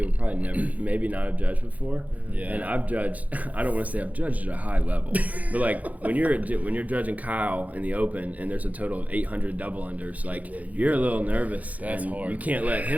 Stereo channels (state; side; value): late; left; 0.075 ms